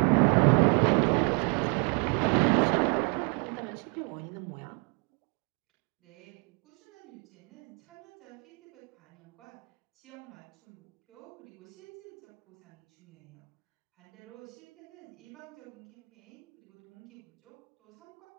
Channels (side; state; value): left; quieter; 34.5 dB